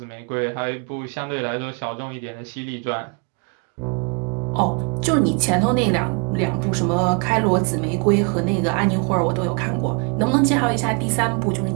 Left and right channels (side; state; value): left; quieter; 35.1 dB